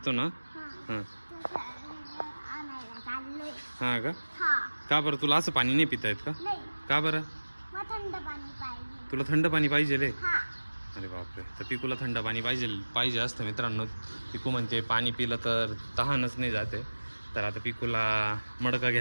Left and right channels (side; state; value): both; inverted; correlation -1.00